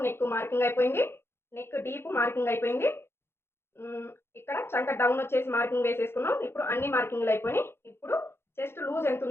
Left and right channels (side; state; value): right; late; 0.12 ms